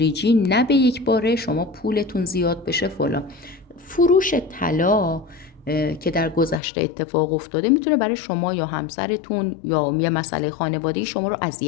نه به یک باره شما پولتون زیاد بشه فلان. فروش طلا که در گذشته اتفاق افتاده میتونه برای شما یا همسرتون یا یه مسئله خانوادگی شما رو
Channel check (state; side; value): drops out; right; at 6.6 s